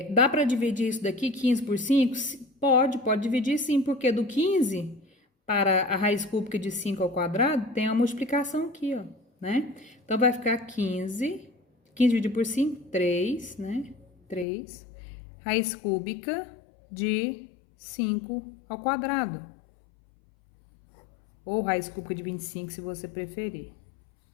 dá para dividir isso daqui, 15 por 5? Pode dividir sim, porque do 15 para a raiz cúbica de 5 ao quadrado, tem uma multiplicação aqui, ó, né? Então, vai ficar 15 dividido por 5, 3, né? 3, raiz cúbica de 5 ao quadrado. Ou raiz cúbica de 25, se você preferir,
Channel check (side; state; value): right; drops out; at 14.5 s